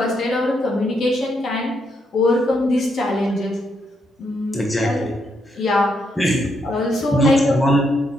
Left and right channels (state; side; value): normal; both; correlation 0.78